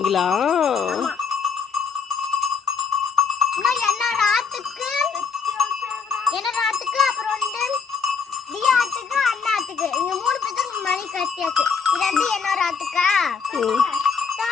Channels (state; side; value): quieter; right; 5.8 dB